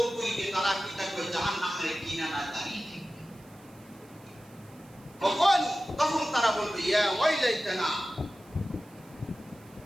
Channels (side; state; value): right; noise; hiss, 27 dB below the sound